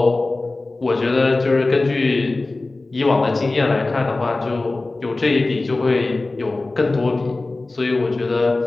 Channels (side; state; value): right; quieter; 3.2 dB